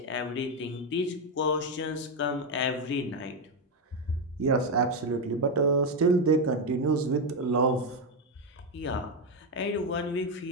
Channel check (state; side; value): normal; both; correlation 0.06